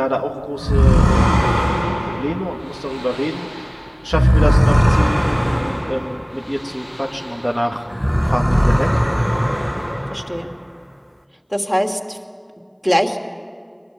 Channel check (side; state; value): both; identical; correlation 1.00